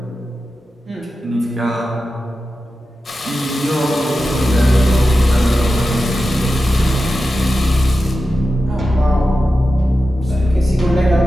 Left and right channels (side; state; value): both; normal; correlation 0.92